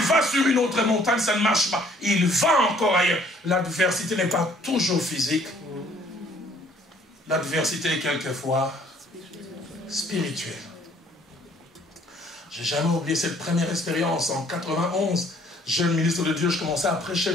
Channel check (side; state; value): both; normal; correlation 0.59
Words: va sur une autre montagne, ça ne marche pas. Il va encore ailleurs. L'adversité n'est pas toujours physique. L'adversité est quelquefois spirituelle. Je n'ai jamais oublié cette première expérience. En 91, jeune ministre de Dieu, je commençais à prêcher